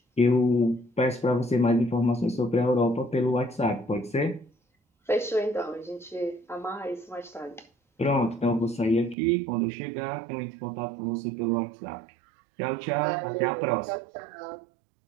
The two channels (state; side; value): drops out; left; at 9.2 s